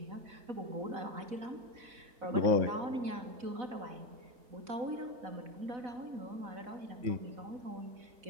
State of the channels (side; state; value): left; late; 4.0 ms